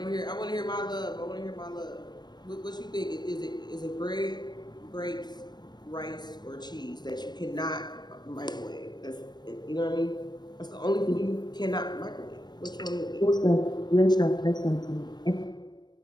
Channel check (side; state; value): right; late; 0.21 ms